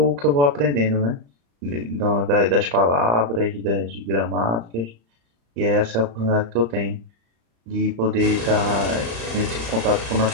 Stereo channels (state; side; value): late; left; 35 ms